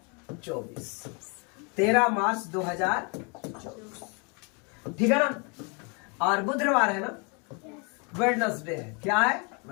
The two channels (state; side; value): quieter; right; 33.9 dB